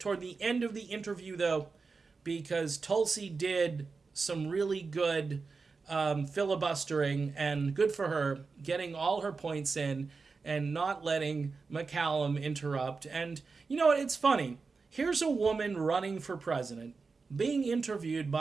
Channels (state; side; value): quieter; left; 4.5 dB